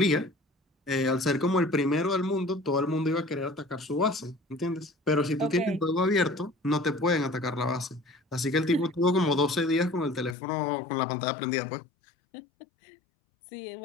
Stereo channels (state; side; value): drops out; right; at 10.4 s